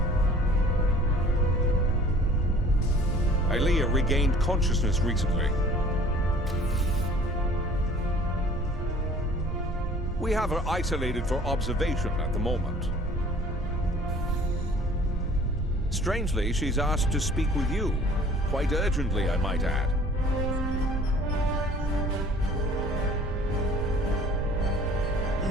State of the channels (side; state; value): both; normal; correlation 0.51